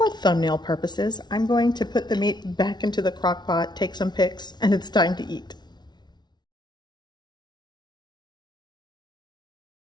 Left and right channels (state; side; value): late; right; 0.20 ms